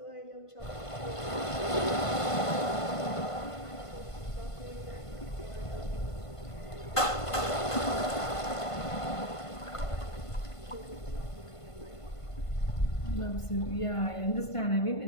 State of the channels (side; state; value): right; late; 1.5 ms